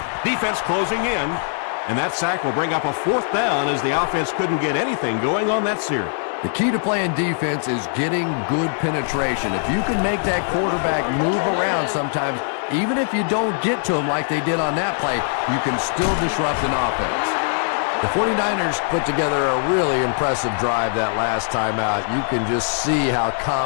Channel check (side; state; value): right; silent; digital silence